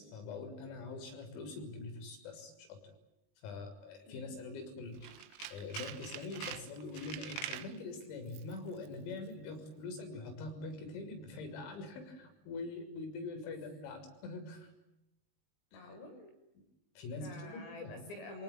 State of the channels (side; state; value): right; late; 19 ms